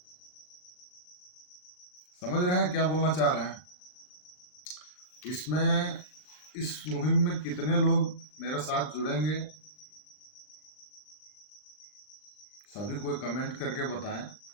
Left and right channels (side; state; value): right; late; 39 ms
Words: समझ रहे हैं क्या बोलना चाह रहे हैं? इसमें इस मुहिम में कितने लोग मेरे साथ जुड़ेंगे, सभी कोई कमेंट करके बताएं।